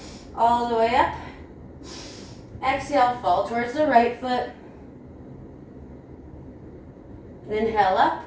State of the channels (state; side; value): identical; both; correlation 1.00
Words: all the way up. Exhale, fall towards the right foot. Inhale up.